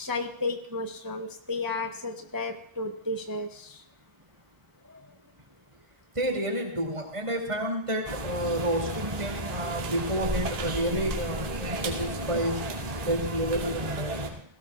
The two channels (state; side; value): late; left; 1.6 ms